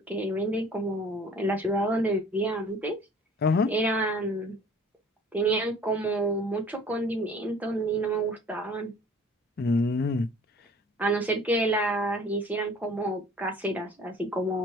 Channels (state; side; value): normal; both; correlation 0.50